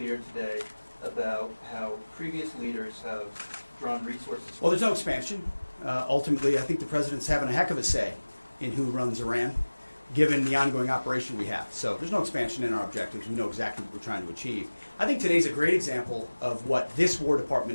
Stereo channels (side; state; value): both; inverted; correlation -1.00